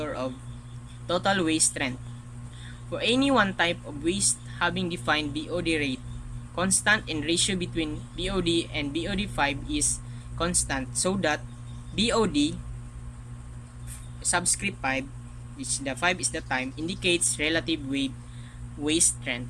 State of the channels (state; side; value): identical; both; correlation 1.00